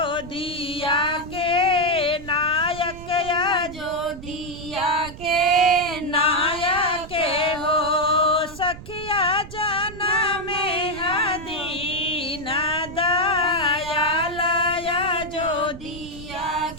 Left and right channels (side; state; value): right; noise; rumble, 14 dB below the sound